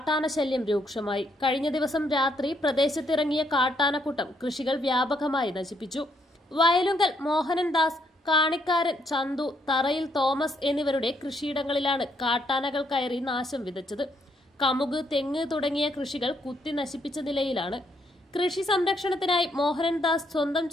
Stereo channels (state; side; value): normal; both; correlation 0.73